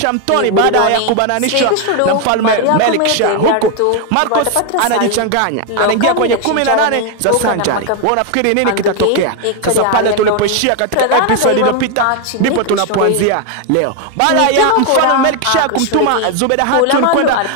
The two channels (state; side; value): different; both; correlation 0.01